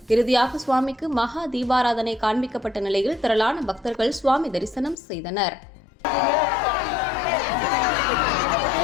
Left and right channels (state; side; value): drops out; right; at 5.0 s